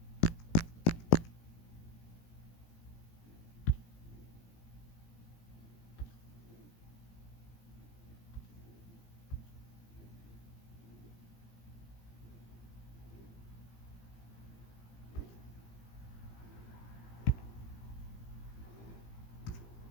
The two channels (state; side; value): late; right; 17 ms